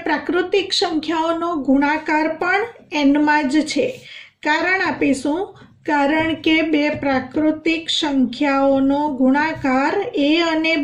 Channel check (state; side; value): identical; both; correlation 1.00